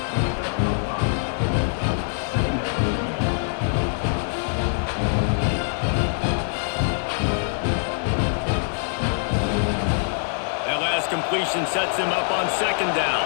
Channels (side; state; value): right; silent; digital silence